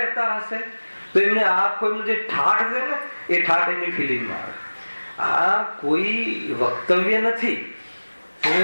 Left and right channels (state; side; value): inverted; both; correlation -1.00